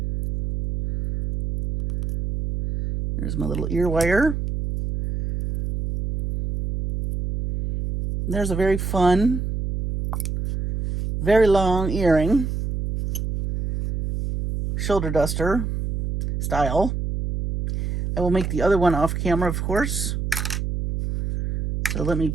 There's my little ear wire. There's a very fun, very long earring. Shoulder duster style. I will make the other one off camera, of course. So let me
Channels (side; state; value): right; noise; hum, 3 dB below the sound